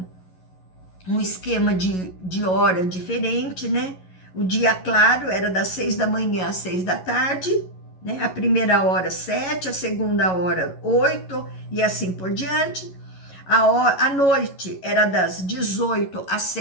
esquema de hora diferente, né? O dia claro era das 6 da manhã às 6 da tarde, né? A primeira hora 7, a segunda hora 8 e assim por diante. A noite era das 18 às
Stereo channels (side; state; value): right; late; 11 ms